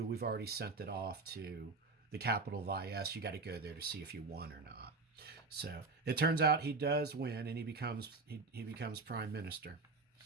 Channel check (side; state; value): left; quieter; 3.8 dB